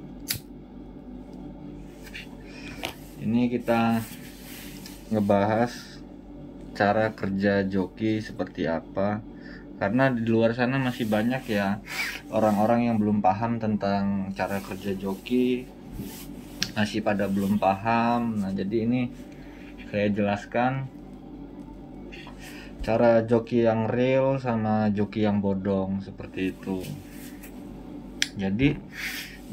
Ini kita ngebahas cara kerja joki seperti apa. Karena di luar sana masih banyak ya orang-orang yang belum paham tentang cara kerja joki. Masih pada belum paham. Nah, jadi ini saya jelaskan cara joki yang real sama joki yang bodong seperti itu. Jadi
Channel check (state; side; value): identical; both; correlation 1.00